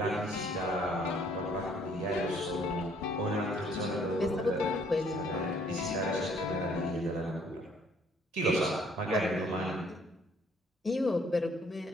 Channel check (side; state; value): both; normal; correlation 0.62